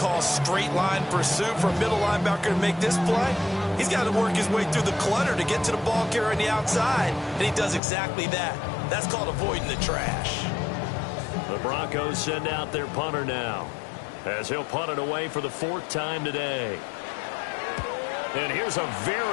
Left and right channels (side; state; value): right; drops out; at 7.8 s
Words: straight line pursuit for a middle linebacker to make this play. He's got to work his way through the clutter to get to the ball carrier on the outside, and he does exactly that. That's called avoiding the trash. The Broncos send out their punter now, as he'll punt it away for the 4th time today. And here's a